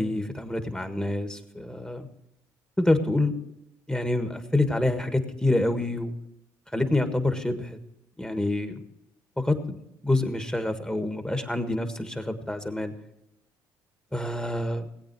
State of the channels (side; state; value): both; normal; correlation 0.88